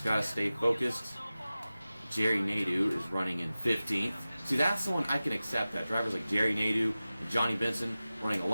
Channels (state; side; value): inverted; both; correlation -0.96